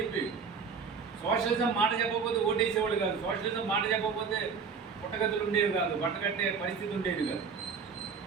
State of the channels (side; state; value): left; quieter; 5.7 dB